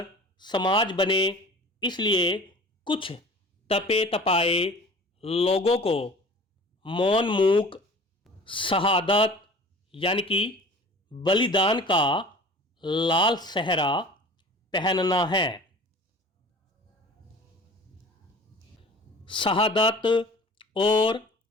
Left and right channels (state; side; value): normal; both; correlation 0.42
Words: समाज बने इसलिए कुछ तपे तपाए लोगों को मौन मूक शहादत यानी कि बलिदान का लाल सहरा पहनना है। शहादत और